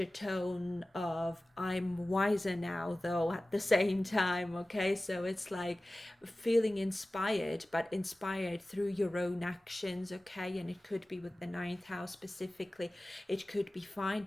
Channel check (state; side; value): normal; both; correlation 0.97